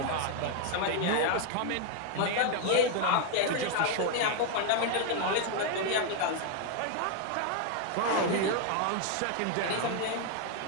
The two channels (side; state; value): both; different; correlation 0.00